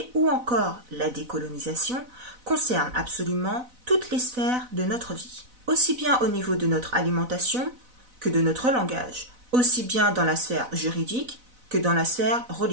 ou encore la décolonisation concerne absolument toutes les sphères de notre vie, aussi bien au niveau de notre alimentation que de notre langage, aussi bien dans la sphère juridique que dans la sphère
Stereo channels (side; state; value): left; late; 4.0 ms